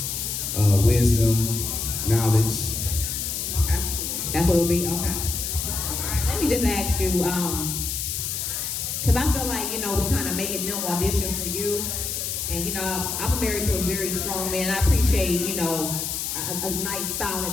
wisdom, knowledge. Okay. That's what it'll be? Okay. All right, let me just ask you, because I feel like, we kind of making them audition for you. And, I'm married to a very strong man. I appreciate, a nice,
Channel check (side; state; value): left; noise; hiss, 3 dB below the sound